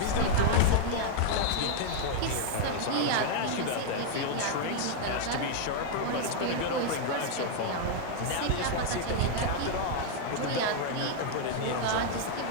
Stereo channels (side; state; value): both; different; correlation 0.00